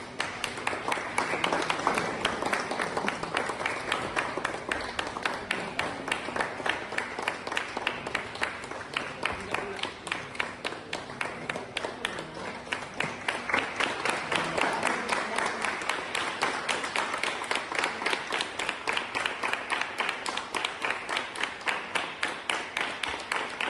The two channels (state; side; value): identical; both; correlation 1.00